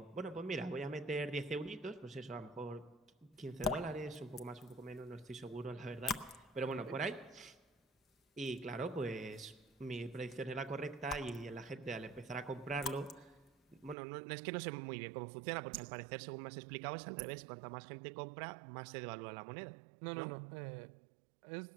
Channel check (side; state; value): left; drops out; at 14.0 s